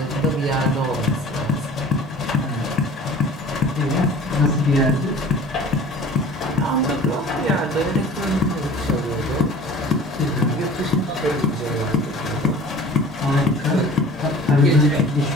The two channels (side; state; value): both; normal; correlation 0.44